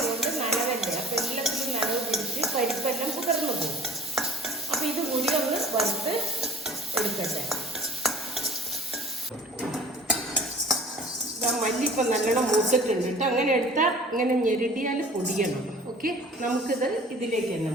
നനവല്ലേ, അപ്പോൾ എല്ലാത്തിലും നനവ് പിടിച്ച് പരിപ്പെല്ലാം കുതിർന്നു പോകും. അപ്പോൾ ഇത് കൂടി ഒന്ന് വറുത്ത് എടുക്കട്ടെ. മല്ലി ഇപ്പം നല്ലോണം മൂത്തിട്ടുണ്ട് കേട്ടോ. അങ്ങനെ എടുത്താൽ ഇങ്ങനെ ഞെരുടിയാൽ പൊടിയണം. ഓക്കെ, നമുക്കിത് ഇതിലേക്ക് തന്നെ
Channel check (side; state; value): both; normal; correlation 0.48